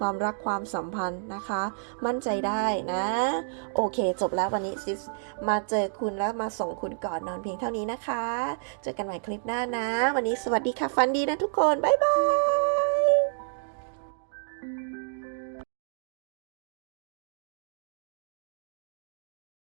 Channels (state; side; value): silent; left; digital silence